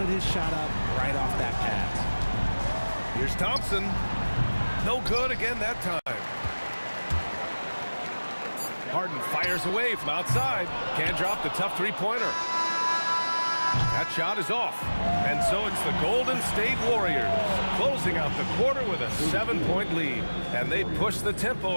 his shot up right off that pass. Here's Thompson. No good again that time. Harden fires away from outside. Can't drop the tough three-pointer. That shot is off. And so it's the Golden State Warriors closing out the quarter with a 7-point lead. And they push the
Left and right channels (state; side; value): inverted; both; correlation -1.00